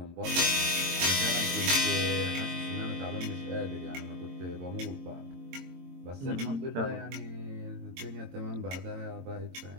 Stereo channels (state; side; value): late; left; 22 ms